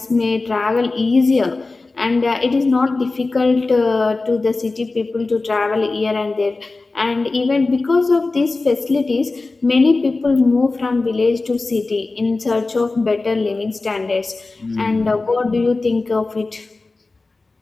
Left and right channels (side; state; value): right; quieter; 3.5 dB